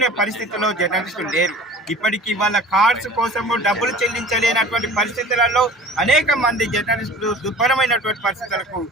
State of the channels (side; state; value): both; normal; correlation 0.43